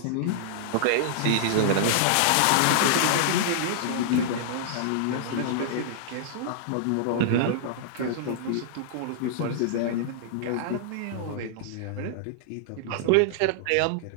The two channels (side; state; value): both; different; correlation -0.01